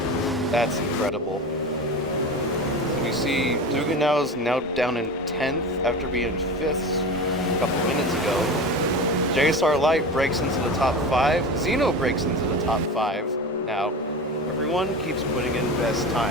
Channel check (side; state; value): both; normal; correlation 0.29